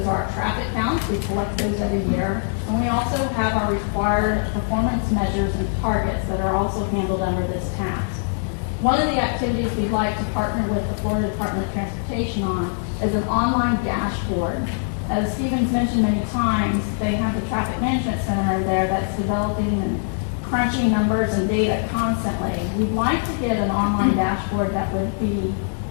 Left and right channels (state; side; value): silent; right; digital silence